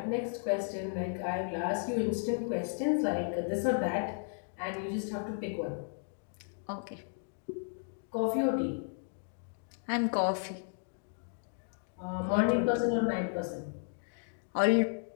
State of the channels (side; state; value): right; silent; digital silence